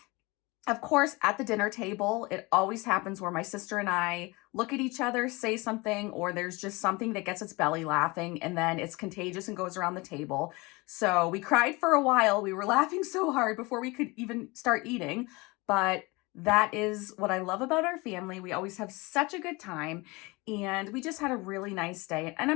of course, at the dinner table, it always happens where my sister and I look at each other, say something, or there's just something that gets its belly laughing, and then it's contagious and goes around the table. So we cried for a while. We were laughing so hard before we could even start eating, but that is what I love about our family. We always have such a good time, and we just had a really nice day, and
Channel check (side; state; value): right; quieter; 24.7 dB